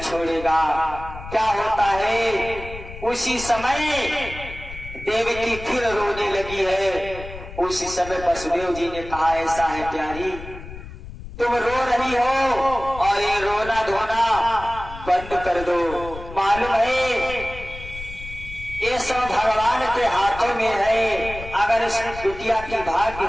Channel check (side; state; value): left; noise; rumble, 13 dB below the sound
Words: क्या होता है, उसी समय देवकी फिर रोने लगी है। उसी समय वसुदेव जी ने कहा, ऐसा है प्यारी, तुम रो रही हो और ये रोना धोना बंद कर दो। मालूम है ये सब भगवान के हाथों में है, अगर इस बिटिया की भाग्य